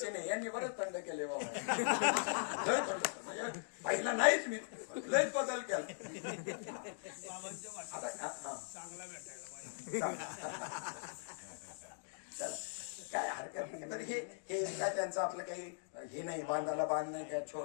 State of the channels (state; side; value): silent; right; digital silence